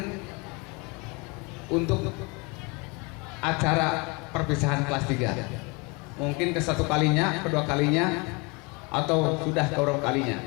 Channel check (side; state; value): right; quieter; 29.1 dB